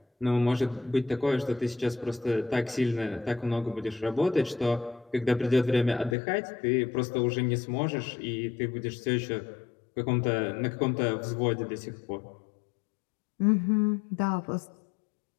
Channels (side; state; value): right; drops out; at 6.2 s